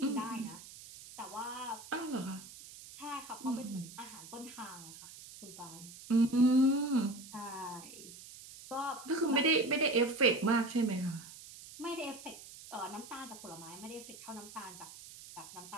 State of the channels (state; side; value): noise; right; hiss, 16 dB below the sound